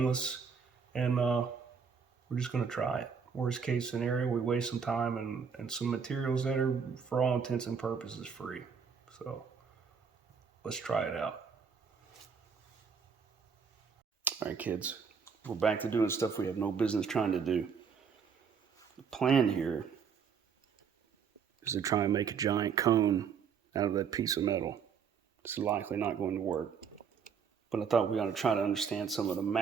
and we're just going to try it. Worst case scenario, we waste some time and some materials that are, for all intents and purposes, free. So let's try it out. All right, kids, we're back to doing stuff we have no business trying to do. The plan here is to try and make a giant cone out of that piece of metal. This is likely not going to work, but I thought we ought to try to understand some of the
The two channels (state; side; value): quieter; left; 6.4 dB